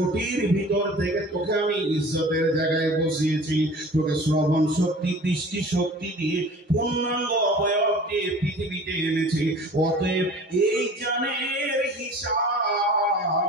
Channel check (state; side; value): normal; both; correlation 0.43